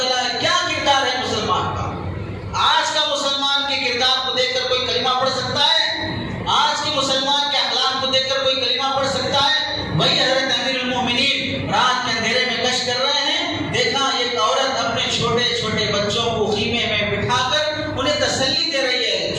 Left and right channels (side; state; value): both; identical; correlation 1.00